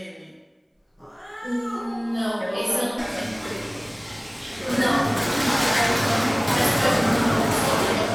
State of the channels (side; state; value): both; identical; correlation 1.00